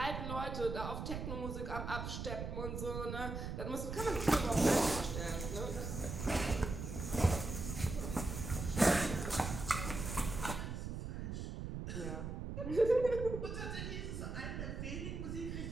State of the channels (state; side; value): noise; right; rumble, 5 dB below the sound